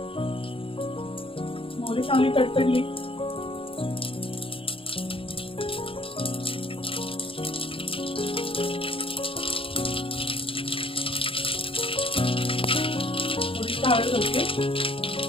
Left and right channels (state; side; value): late; right; 0.26 ms